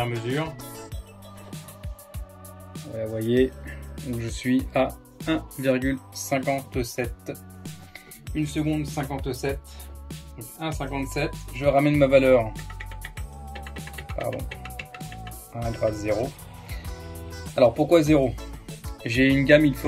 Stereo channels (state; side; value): identical; both; correlation 1.00